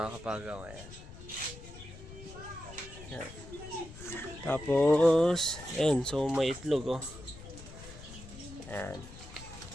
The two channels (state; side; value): noise; left; rumble, 15 dB below the sound